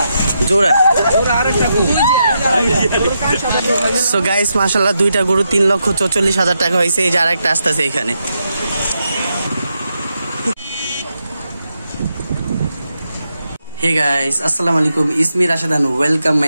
জোড়া so guys মাশাআল্লাহ দুইটা গরু 3,44,000 টাকা হয়েছে। এই যে আরেকটা আসতেছে এখানে। হে গাইস আসসালামু আলাইকুম, ইসমি Rashedan, welcome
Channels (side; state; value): both; inverted; correlation -0.83